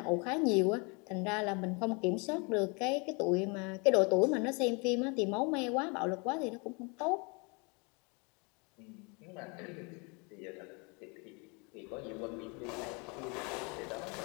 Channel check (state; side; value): quieter; right; 31.5 dB